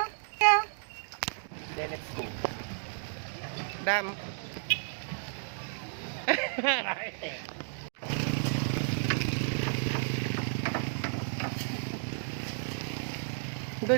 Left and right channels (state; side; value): silent; left; digital silence